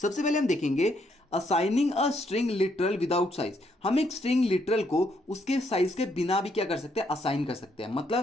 पहले हम देखेंगे assigning a string literal without size. हम एक स्ट्रिंग लिटरल को उसके साइज के बिना भी क्या कर सकते हैं, असाइन कर सकते हैं।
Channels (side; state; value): both; normal; correlation 0.73